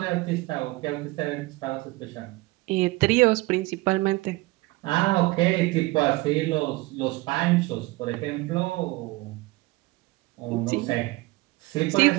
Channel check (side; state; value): left; quieter; 21.2 dB